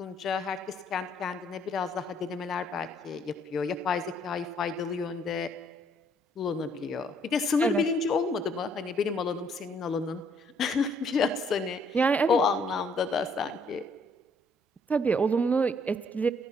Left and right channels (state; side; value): normal; both; correlation 0.66